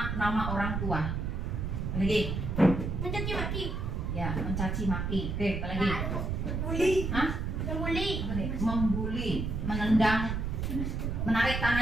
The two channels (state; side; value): noise; right; rumble, 2 dB below the sound